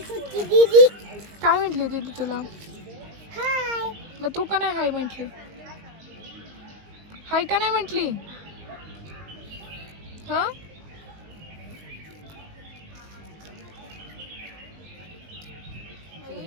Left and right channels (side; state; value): left; late; 19 ms